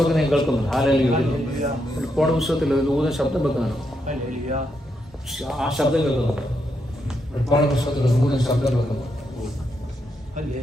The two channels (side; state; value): both; normal; correlation 0.81